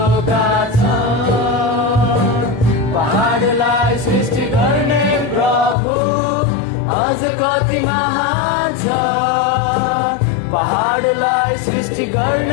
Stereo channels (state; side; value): drops out; right; at 5.8 s